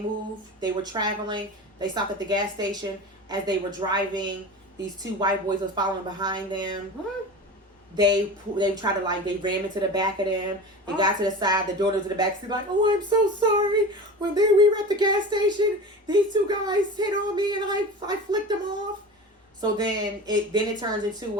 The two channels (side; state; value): both; normal; correlation 0.32